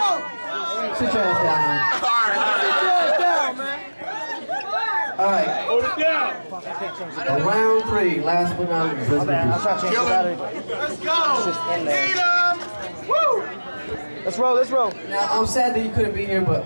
Sit your ass down, man. Sit your ass down, man. All right. Hold it down. Round 3, last but not least. Let's go. Woo. Let's roll. Let's roll. Now, I'm sad that you couldn't be here,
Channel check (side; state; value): both; inverted; correlation -1.00